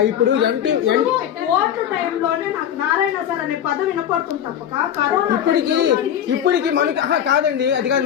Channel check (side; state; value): right; quieter; 9.9 dB